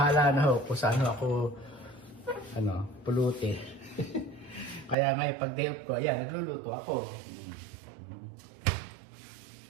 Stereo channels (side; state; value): left; drops out; at 5.0 s